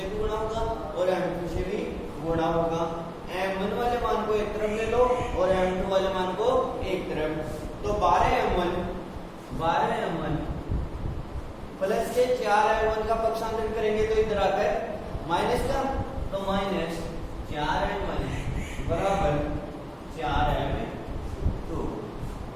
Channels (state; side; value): identical; both; correlation 1.00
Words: भी गुणा होगा और m2 से भी गुणा होगा। m1 वाले मान को एक तरफ ले लो और m2 वाले मान को एक तरफ, तो 12m1 प्लस के 4m1 का पक्षांतर करेंगे तो इधर आकर माइनस का, तो माइनस 4m1 बराबर 4m2।